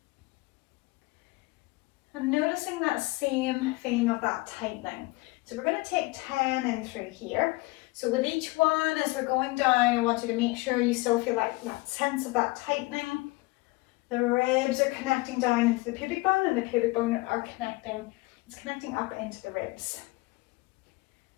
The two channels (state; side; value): quieter; right; 22.8 dB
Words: And noticing that same feeling of that tightening. So we're going to take 10 in through here. So with each one, as we're going down, I want you to make sure you still feel like that sense of that tightening. The ribs are connecting down into the pubic bone, and the pubic bone are connecting up into the ribs.